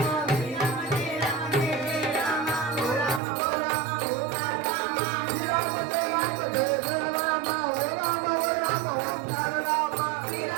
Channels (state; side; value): drops out; left; at 3.2 s